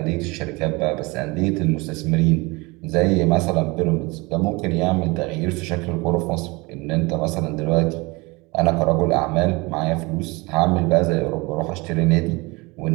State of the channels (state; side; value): quieter; left; 25.1 dB